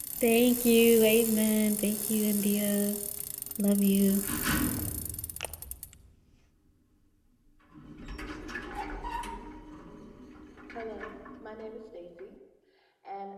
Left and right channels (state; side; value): identical; both; correlation 1.00